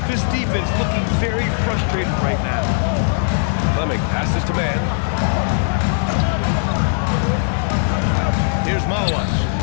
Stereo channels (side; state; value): right; silent; digital silence